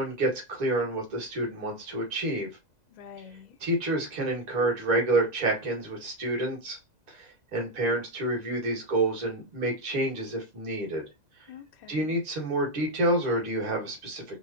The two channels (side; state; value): left; late; 2.0 ms